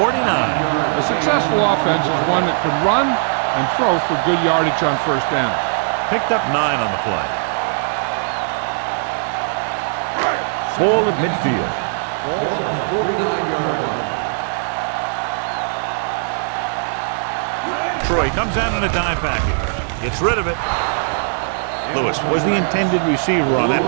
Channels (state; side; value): silent; left; digital silence